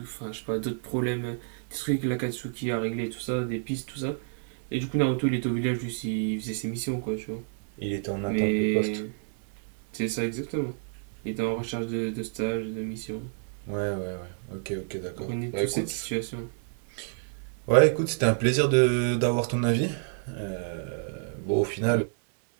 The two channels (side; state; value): left; silent; 59 dB below the other